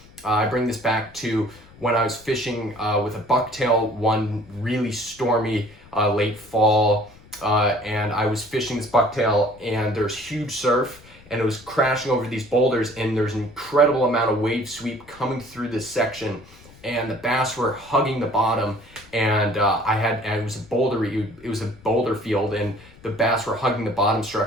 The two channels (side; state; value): left; noise; rumble, 24 dB below the sound